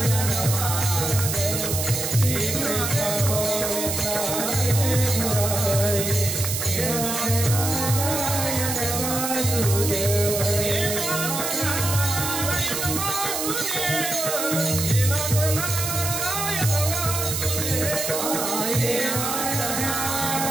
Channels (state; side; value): noise; right; hiss, 2 dB below the sound